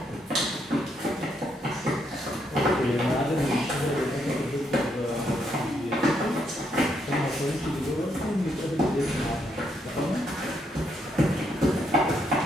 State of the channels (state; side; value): normal; both; correlation 0.75